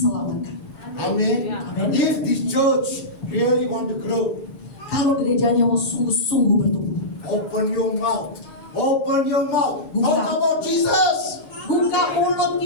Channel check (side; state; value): right; late; 7.2 ms